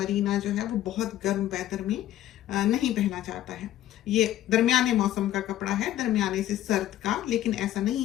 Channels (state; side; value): quieter; right; 13.1 dB